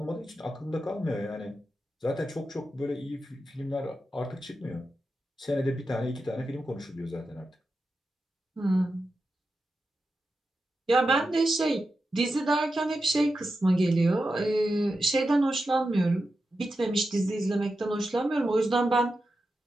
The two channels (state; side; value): normal; both; correlation 0.90